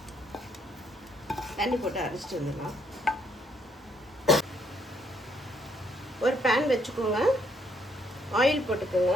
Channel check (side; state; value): both; normal; correlation 0.70